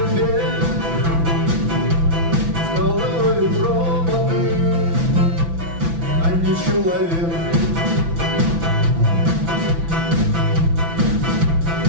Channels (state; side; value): late; left; 6.0 ms